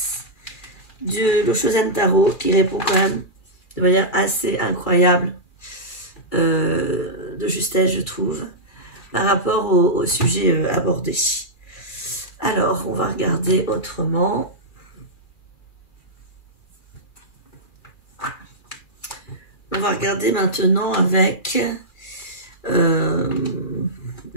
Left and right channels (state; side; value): late; right; 2.4 ms